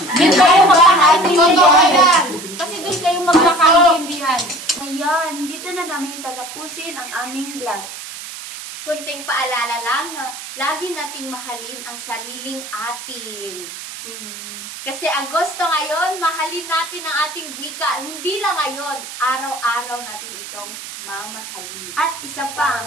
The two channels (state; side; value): noise; right; hiss, 11 dB below the sound